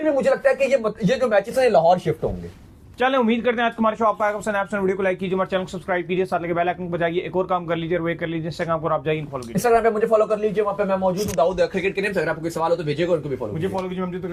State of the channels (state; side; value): identical; both; correlation 1.00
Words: भी मुझे लगता है कि ये जो मैचेस हैं लाहौर शिफ्ट होंगे। चलें, उम्मीद करते हैं आज हमारे शो आपको आएगा पसंद। आप वीडियो को लाइक कीजिए, हमारे चैनल को सब्सक्राइब कीजिए, साथ लगे बेल आइकन को बजाइए। एक और काम कर लीजिए, वो कर लीजिए, इंस्टाग्राम पर आप जाइए फॉलो कीजिए, इंस्टाग्राम पे मुझे फॉलो कर लीजिए, वहां पे मैं मौजूद हूं दाऊद क्रिकेट के नेम से। अगर आपको कोई सवाल हो तो भेजिएगा, उनको भी फॉलो मुझे फॉलो कीजिए।